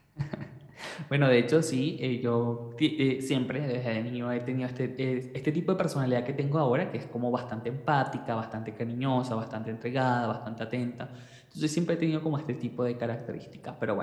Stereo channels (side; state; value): both; identical; correlation 1.00